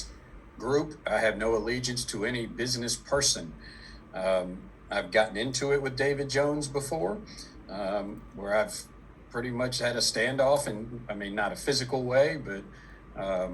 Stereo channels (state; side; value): identical; both; correlation 1.00